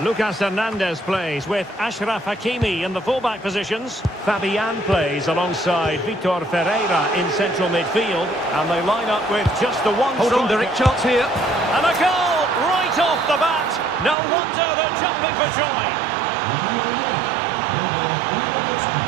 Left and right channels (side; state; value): left; drops out; at 14.2 s